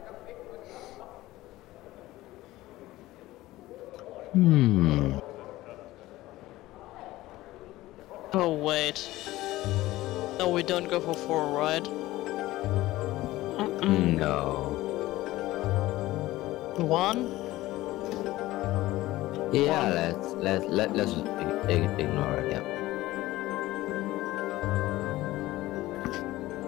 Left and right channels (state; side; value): quieter; right; 17.2 dB